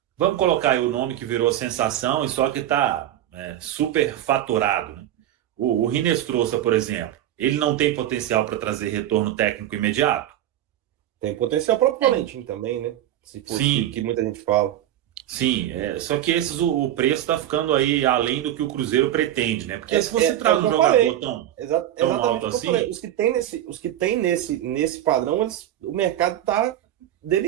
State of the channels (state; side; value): quieter; left; 12.4 dB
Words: Vamos colocar aí o nome que virou sensação e só que está super faturado. Né? O Rinestrosa, por exemplo, ele não tem potencial para trazer retorno técnico imediato? Tem potencial próprio Valentim também, né? Se for Sim. que muita gente fala. Sim, só que o preço está ficando aí além do que o Cruzeiro pretende, né? Porque se você traz um jogador tão alto assim. Os que tem nesse padrão, o mercado está